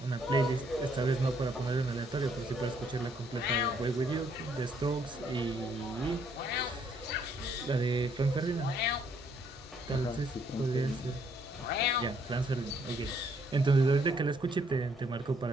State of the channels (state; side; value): normal; both; correlation 0.68